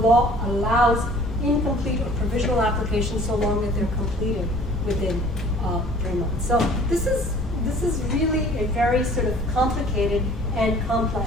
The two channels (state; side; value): normal; both; correlation 0.51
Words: allows incomplete or provisional applications so long that they're completed within 3 months. So this is very sort of complicated and complex